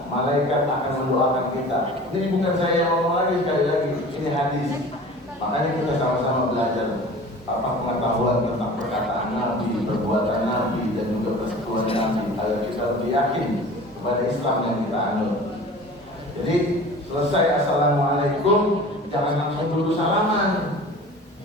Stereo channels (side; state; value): both; normal; correlation 0.41